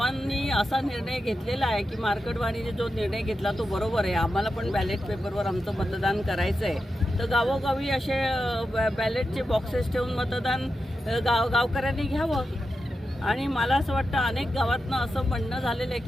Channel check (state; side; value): normal; both; correlation 0.89